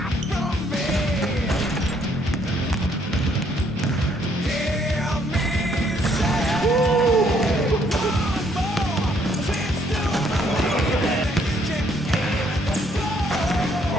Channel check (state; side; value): normal; both; correlation 0.67